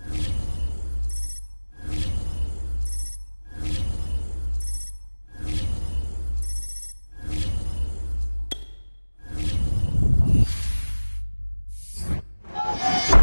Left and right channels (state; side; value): inverted; both; correlation -1.00